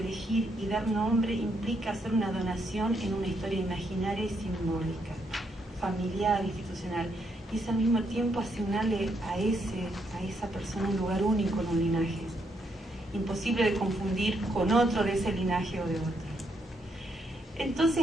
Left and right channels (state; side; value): normal; both; correlation 0.76